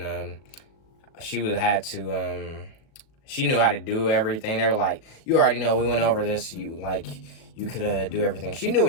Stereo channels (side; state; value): right; late; 37 ms